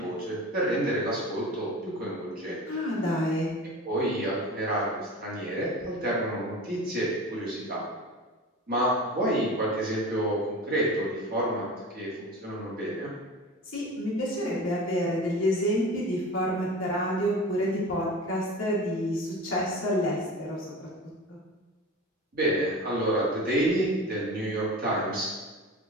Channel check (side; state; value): both; normal; correlation 0.34